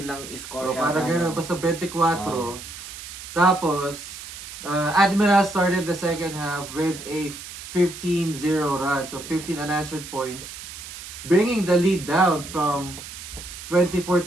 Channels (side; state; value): right; noise; hiss, 12 dB below the sound